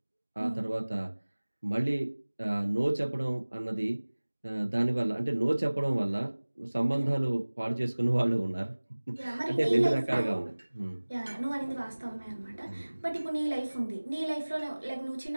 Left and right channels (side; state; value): both; inverted; correlation -1.00